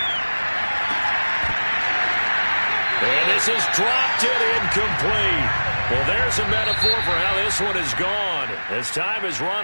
And this is dropped it incomplete. Well, there's a metaphor for how this one is gone as time has run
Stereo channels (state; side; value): inverted; both; correlation -1.00